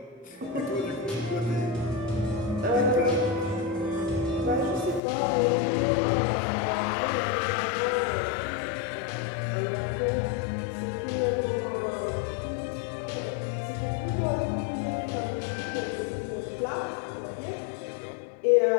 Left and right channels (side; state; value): right; drops out; at 5.0 s